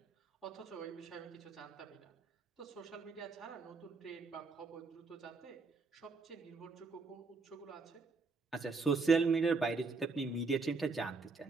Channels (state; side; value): quieter; left; 4.2 dB